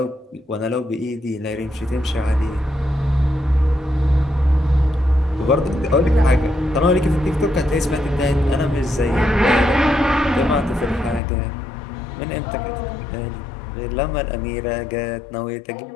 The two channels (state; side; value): drops out; right; at 11.2 s